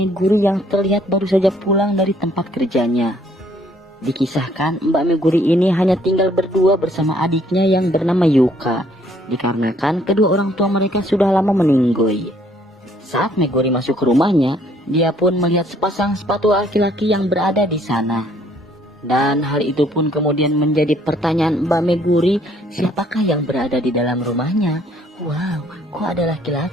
yang terlihat baru saja pulang dari tempat kerjanya. Dikisahkan Mbak Meguri ini hanya tinggal berdua bersama adiknya yang bernama Yuka, dikarenakan kedua orang tua mereka sudah lama meninggoy. Saat Meguri masuk ke rumahnya, dia pun melihat sepasang sepatu laki-laki yang berada di sana. Dan hal itu pun kemudian menjadi pertanyaan Mbak Meguri, siapakah yang berada di dalam rumahnya? Wow, kok ada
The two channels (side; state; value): both; normal; correlation 0.63